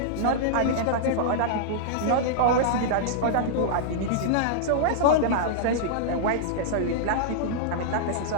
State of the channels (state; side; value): different; both; correlation -0.02